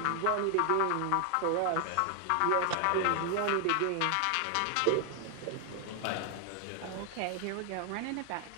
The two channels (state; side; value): different; both; correlation 0.00